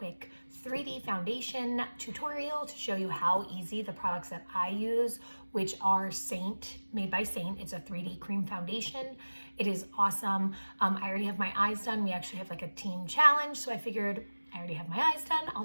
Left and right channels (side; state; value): both; inverted; correlation -1.00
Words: 3D foundation tutorial to show you how easy the products that I use, which are made by Saint. It's a 3D cream foundation. It is awesome. I already have my eyes done. We actually have like a team challenge, so I figured I already have my eyes done.